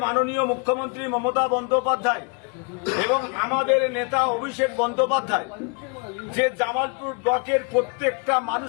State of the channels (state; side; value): quieter; right; 34.2 dB